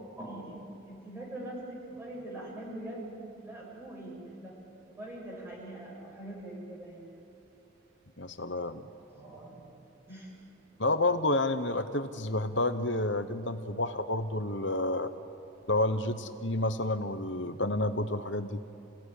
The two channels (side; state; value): both; normal; correlation -0.06